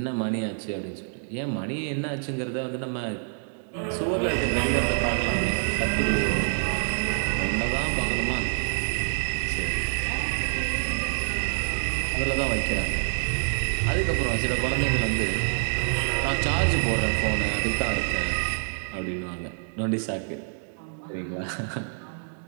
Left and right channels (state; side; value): silent; left; 60 dB below the other